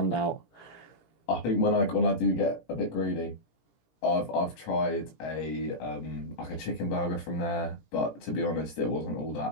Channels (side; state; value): right; late; 17 ms